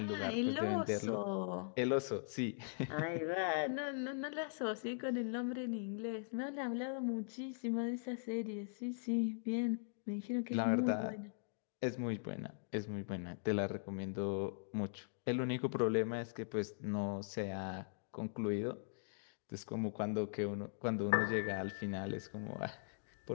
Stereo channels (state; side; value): silent; right; digital silence